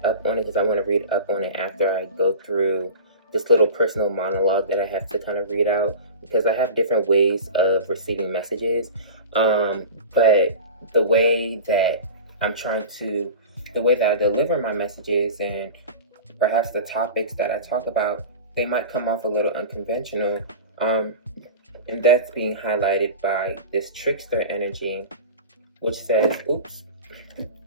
up on it because I want to read up on it after I go through this little personal monologue that I have to kind of read out, because I have different ways of receiving messages. But the way that the way that I deliver my messages and perhaps the topics that I talk about, they might come off a little unconventional. And that's being highlighted by this trickster energy, which says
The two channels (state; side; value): inverted; both; correlation -0.34